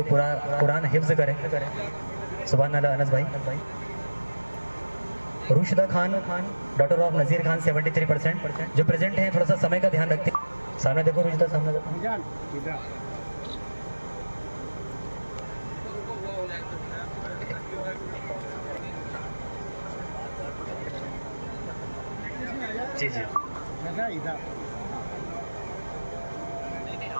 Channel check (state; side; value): inverted; both; correlation -1.00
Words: पूरा कुरान हिफ्ज करे, सुभान अल्लाह। अनस भाई। रुशिदा खान, डॉटर ऑफ नज़ीर खान 73% जो प्रेजेंट हैं, थोड़ा सा समय का ध्यान रखते हैं। सामने देखो रुशिदा, सामने देखो। जी जी